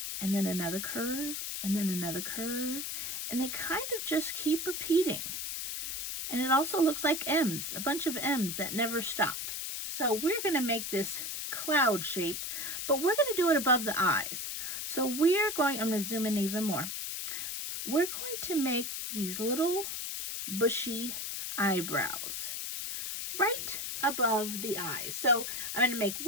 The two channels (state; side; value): noise; left; hiss, 4 dB below the sound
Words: and then another curve, and then another curve, and they kind of just keep repeating. And it also looks like M's, a bunch of M's that never stop. So we're going to make this cloud shape, but we're going to do it above the eyes. So I'm going to zoom in even more. We're going to make these little bushy eyebrows right above the eyes. So I'm going to make